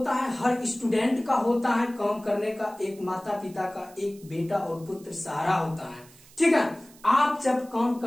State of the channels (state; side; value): noise; right; hiss, 24 dB below the sound